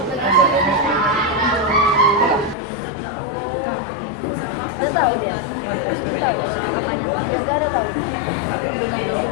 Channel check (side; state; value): right; drops out; at 2.6 s